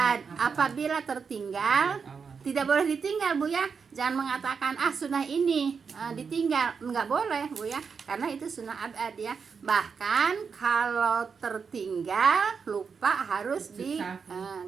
Apabila tertinggal tidak boleh ditinggal bu ya, jangan mengatakan sunnah ini ditinggal, nggak boleh bu ya, karena itu sunnah abad ya. Bahkan kalau tertinggal lupa harus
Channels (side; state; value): left; quieter; 5.8 dB